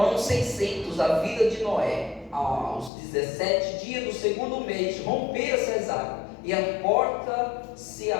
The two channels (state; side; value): drops out; right; at 2.9 s